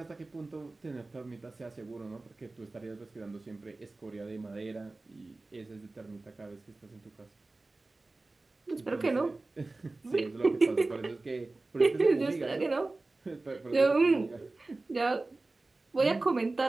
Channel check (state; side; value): quieter; left; 3.2 dB